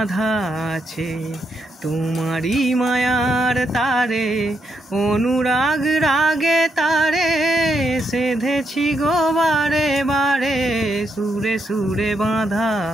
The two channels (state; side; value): normal; both; correlation 0.79